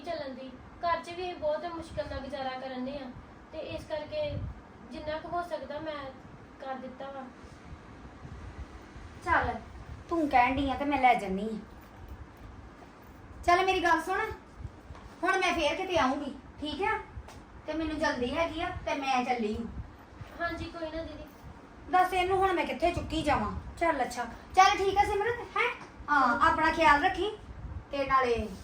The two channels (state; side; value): identical; both; correlation 1.00